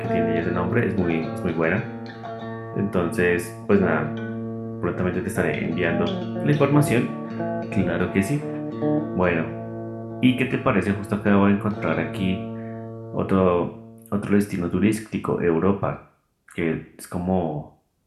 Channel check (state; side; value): identical; both; correlation 1.00